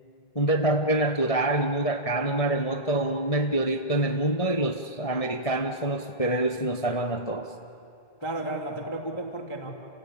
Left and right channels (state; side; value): late; right; 1.7 ms